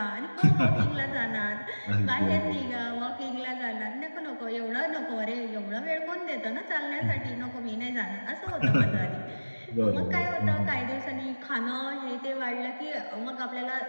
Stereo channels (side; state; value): both; inverted; correlation -1.00